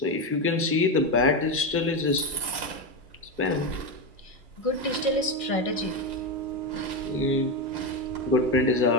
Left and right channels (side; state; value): left; late; 2.4 ms